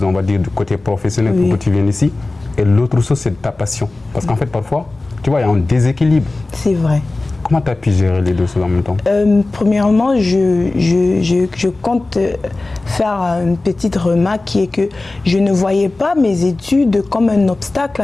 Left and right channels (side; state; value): right; quieter; 3.1 dB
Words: on va dire, du côté professionnel pour que tu viennes ici, et l'autre chose, c'est ta passion. Parce qu'en fait, parfois, tu vois, il y a un déséquilibre. C'est vrai. Comment tu as pu gérer les deux choses en même temps? Premièrement, je compte faire une petite remarque qui est que je ne voyais pas mes études comme un obstacle